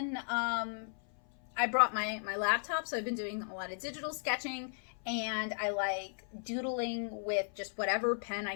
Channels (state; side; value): silent; right; 54 dB below the other